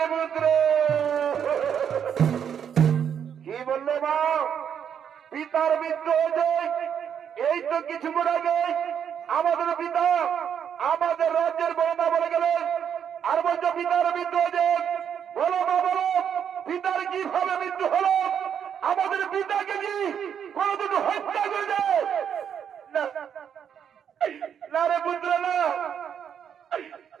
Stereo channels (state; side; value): quieter; left; 8.2 dB